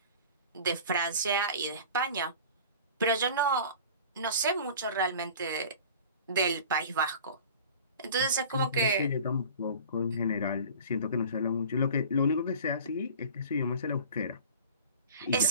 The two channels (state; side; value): inverted; both; correlation -0.41